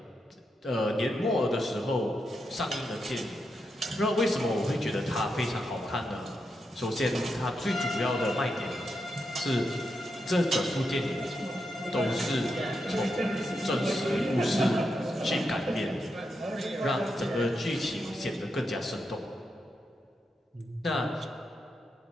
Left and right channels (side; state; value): both; normal; correlation 0.85